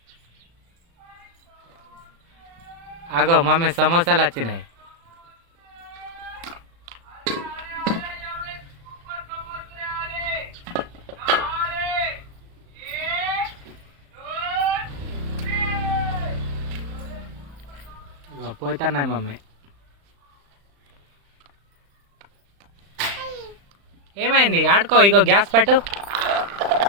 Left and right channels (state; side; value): late; left; 35 ms